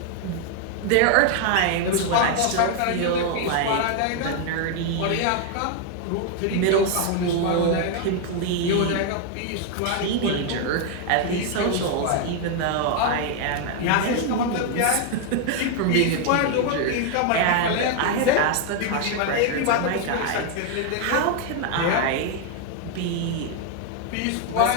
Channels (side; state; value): both; different; correlation 0.00